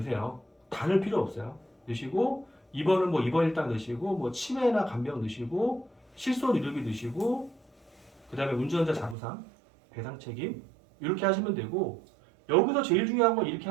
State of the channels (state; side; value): drops out; left; at 9.2 s